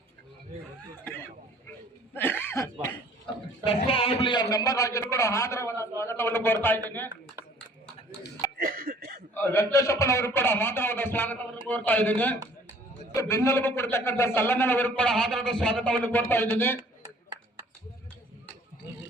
ಕಸ್ಬಾ ಹೋಬಳಿಯ ಮೆಂಬರ್ ಆಗಿದ್ರು ಕೂಡ ಆದರವಾದ ಸ್ವಾಗತವನ್ನು ಕೋರ್ತಾ ಇದ್ದೀನಿ. ವೆಂಕಟೇಶಪ್ಪನವರು ಕೂಡ ಆದರವಾದ ಸ್ವಾಗತವನ್ನು ಕೋರ್ತಾ ಇದ್ದೀನಿ. ಬೆನ್ನೆಲುಬು ಕೊಡ್ತಕ್ಕಂಥ ಸಲ್ಲಣ್ಣನವರು ಕೂಡ ಆದರದ ಸ್ವಾಗತವನ್ನು ಕೋರ್ತಾ ಇದ್ದೀನಿ.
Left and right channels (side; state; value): both; normal; correlation 0.54